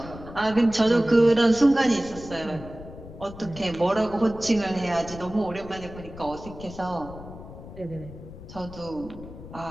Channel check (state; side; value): noise; left; rumble, 14 dB below the sound